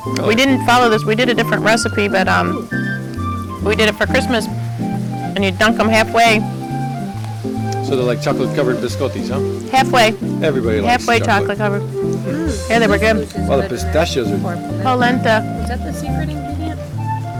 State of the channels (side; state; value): both; identical; correlation 1.00